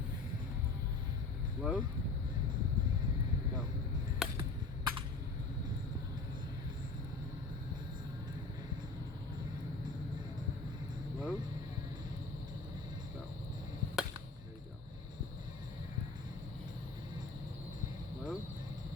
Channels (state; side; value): quieter; right; 3.8 dB